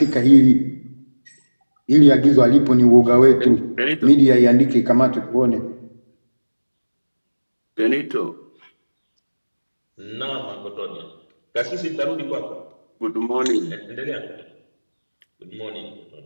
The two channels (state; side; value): inverted; both; correlation -1.00